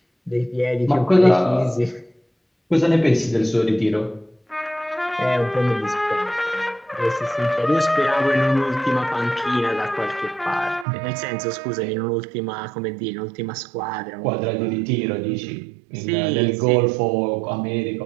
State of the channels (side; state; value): left; drops out; at 10.9 s